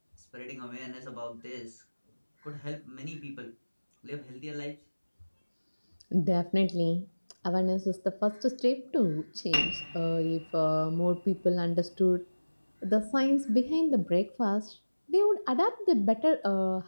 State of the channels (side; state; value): both; inverted; correlation -1.00